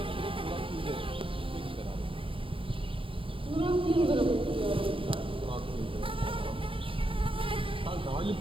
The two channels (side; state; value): left; late; 0.25 ms